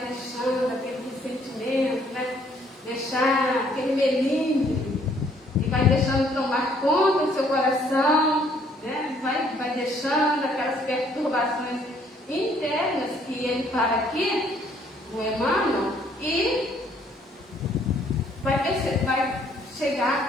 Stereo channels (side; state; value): both; normal; correlation 0.64